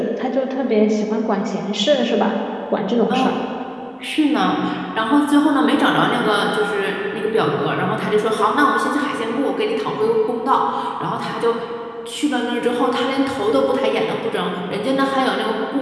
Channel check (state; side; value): identical; both; correlation 1.00